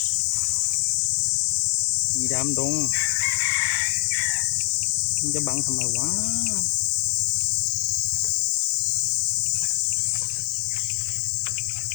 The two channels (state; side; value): silent; right; digital silence